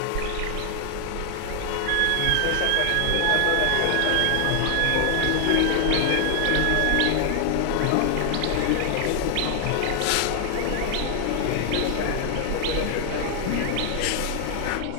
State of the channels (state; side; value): different; both; correlation 0.00